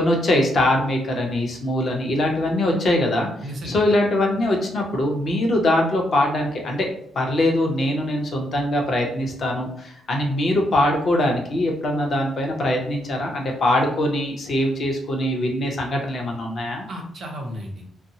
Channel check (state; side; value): normal; both; correlation 0.77